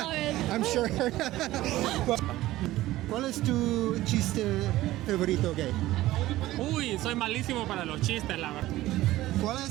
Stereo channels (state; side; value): quieter; left; 16.3 dB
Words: it. I'm sure. ¿Cuál es tu chiste favorito gay? Uy, soy malísimo para los chistes, la verdad. ¿Cuál